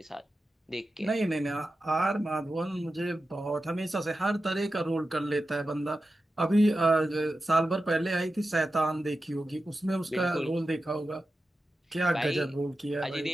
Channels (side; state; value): both; normal; correlation 0.92